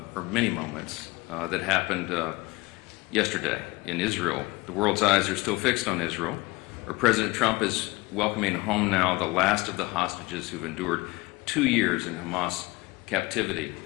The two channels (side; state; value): right; quieter; 22.8 dB